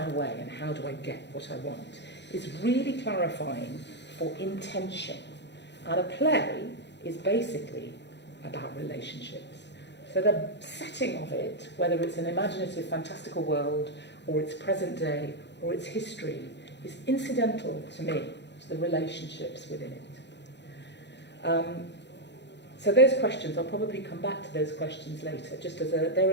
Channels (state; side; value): late; right; 0.51 ms